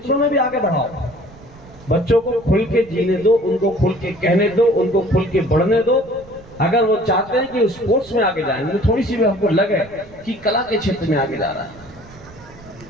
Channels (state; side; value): noise; right; rumble, 22 dB below the sound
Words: में भी आगे बढ़ाओ। बच्चों को खुल के जीने दो, उनको खुल के कहने दो, उनको खुल के बढ़ने दो। अगर वो चाहते हैं कि स्पोर्ट्स में आगे जाए, तो थोड़ी सी भी हमको लगे कि कला के क्षेत्र में आगे जा रहा है।